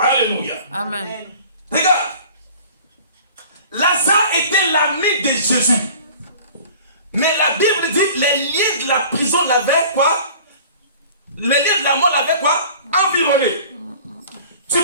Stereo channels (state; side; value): inverted; both; correlation -0.45